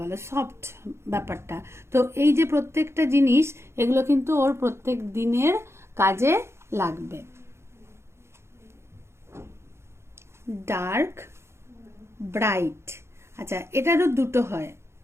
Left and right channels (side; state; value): left; late; 0.13 ms